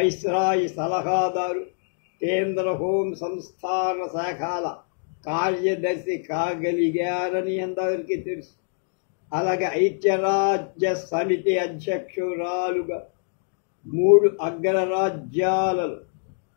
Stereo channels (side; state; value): right; silent; digital silence